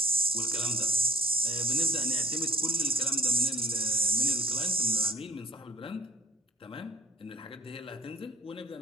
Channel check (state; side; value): normal; both; correlation 0.54